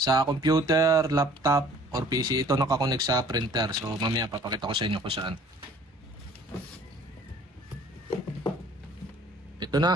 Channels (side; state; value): both; normal; correlation 0.53